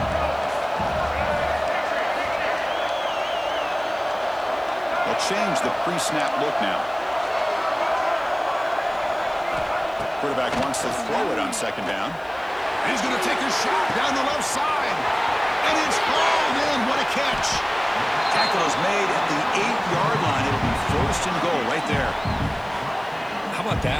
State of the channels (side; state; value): left; noise; hiss, 29 dB below the sound